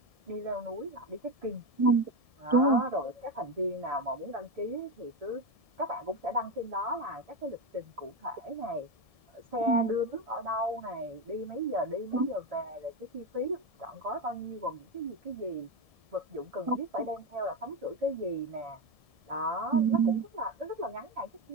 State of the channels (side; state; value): left; late; 1.7 ms